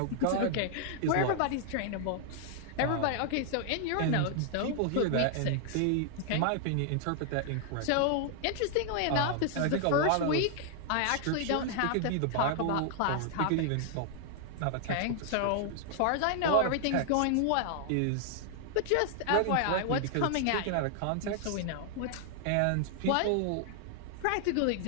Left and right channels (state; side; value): different; both; correlation 0.00